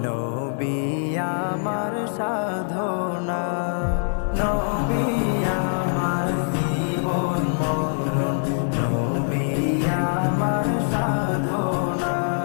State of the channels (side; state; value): right; silent; digital silence